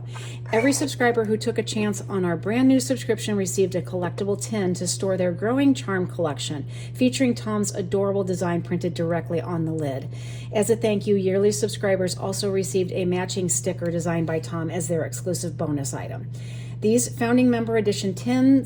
Every subscriber who took a chance on our brand new subscription received a collectible tin to store their growing charm collection, featuring Tom's adorable design printed directly on the lid. As a thank you, yearly subscribers also received a matching sticker designed by Tom as their exclusive bonus item. These founding member edition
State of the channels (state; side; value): identical; both; correlation 1.00